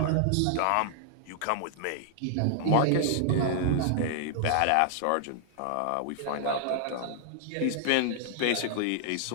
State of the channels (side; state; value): both; different; correlation -0.01